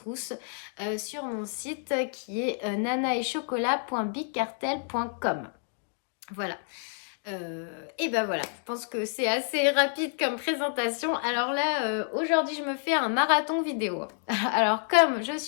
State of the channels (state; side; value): silent; right; 59 dB below the other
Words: sur mon site qui est nanaetchocolat.bigcartel.com. Voilà. Et ben voilà, je pense que c'est assez rapide comme présentation. Alors là, aujourd'hui, je me fais un marathon vidéo. Alors comme je